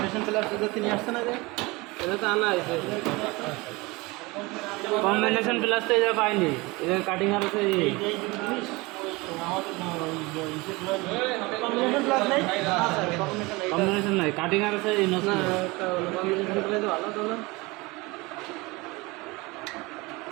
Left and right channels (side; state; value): left; quieter; 23.8 dB